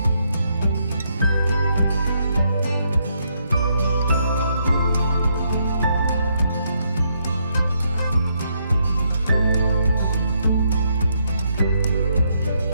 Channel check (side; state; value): both; inverted; correlation -0.76